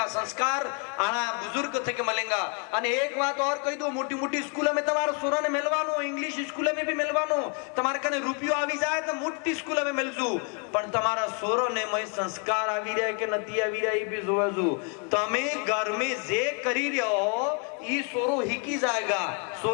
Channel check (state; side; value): quieter; right; 37.8 dB